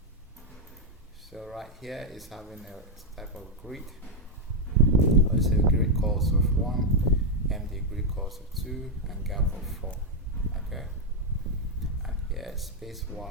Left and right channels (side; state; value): both; normal; correlation 0.02